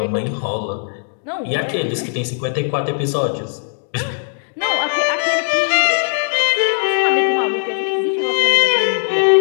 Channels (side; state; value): right; silent; digital silence